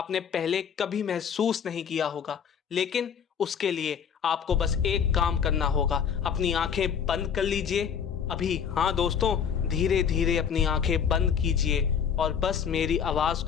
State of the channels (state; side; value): quieter; right; 7.5 dB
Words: पहले कभी महसूस नहीं किया होगा। लेकिन उसके लिए आपको बस एक काम करना होगा, अपनी आंखें बंद कर लीजिए अभी। हाँ दोस्तों, धीरे धीरे अपनी आंखें बंद कीजिए और बस मेरी आवाज